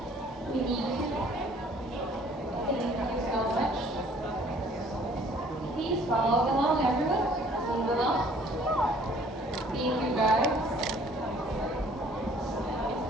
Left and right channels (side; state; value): both; normal; correlation 0.57